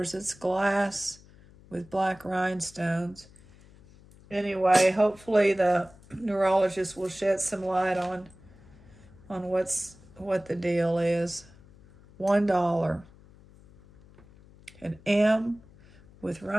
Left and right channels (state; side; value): noise; left; hum, 24 dB below the sound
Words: It's glass with black rhinestones. Anyway, hopefully the neurologist will shed some light on what the deal is. $1. An M with